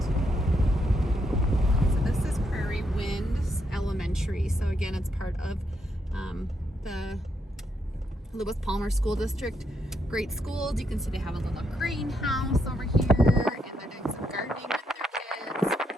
So this is Prairie Winds Elementary. So again, it's part of the Lewis Palmer School District. Great schools. You can see they have a little greenhouse over here, and they're doing some gardening with their kids.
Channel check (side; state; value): both; normal; correlation 0.78